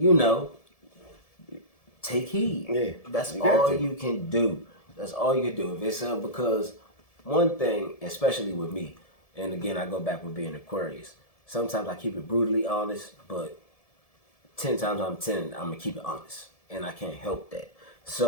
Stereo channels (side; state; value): right; late; 1.7 ms